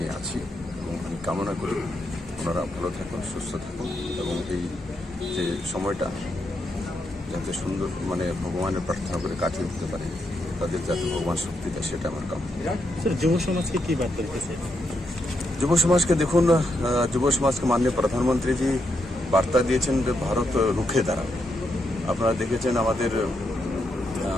আছি এবং আমি কামনা করি ওনারা ভালো থাকুন, সুস্থ থাকুন এবং এই যে সময়টা যাতে সুন্দর ভগবানের প্রার্থনা করে কাটিয়ে উঠতে পারে, তাদের যাতে ভগবান শক্তি দেয়, সেটা আমার কামনা। যুব সমাজকে কি বার্তা দিতেছে? যুব সমাজকে দেখুন, যুব সমাজকে মাননীয় প্রধানমন্ত্রীজি বার্তা দিয়েছেন যে ভারত রুখে দাঁড়াবে। আপনারা দেখেছেন আমাদের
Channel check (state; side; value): normal; both; correlation 0.81